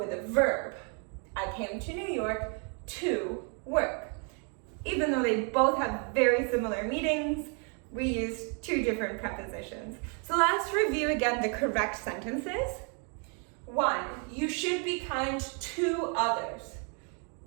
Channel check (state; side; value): quieter; left; 38.3 dB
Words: a verb. I came to New York to work. Even though they both have very similar meanings, we use 2 different prepositions. So let's review again the correct sentences. 1, you should be kind to others.